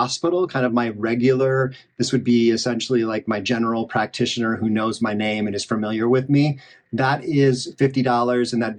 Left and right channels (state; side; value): identical; both; correlation 1.00